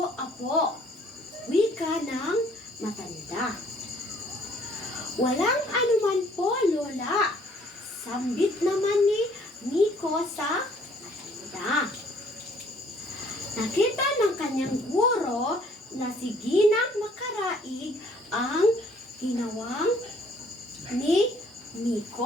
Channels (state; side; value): normal; both; correlation 0.60